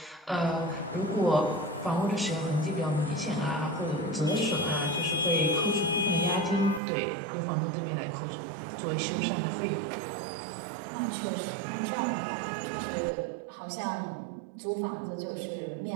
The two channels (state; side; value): drops out; left; at 6.8 s